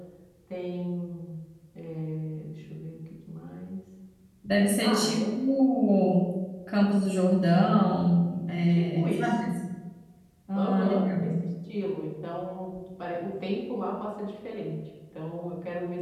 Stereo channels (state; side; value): identical; both; correlation 1.00